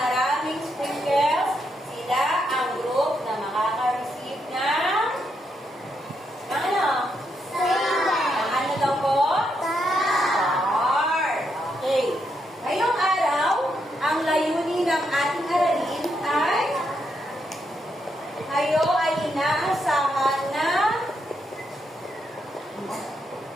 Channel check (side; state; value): both; normal; correlation 0.80